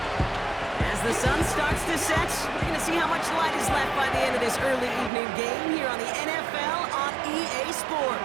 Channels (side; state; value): left; drops out; at 5.1 s